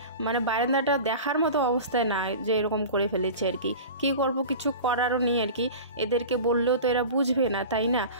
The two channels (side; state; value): both; inverted; correlation -0.34